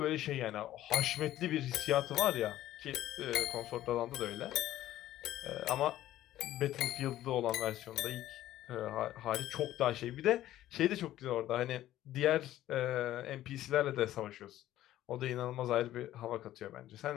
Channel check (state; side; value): quieter; right; 13.7 dB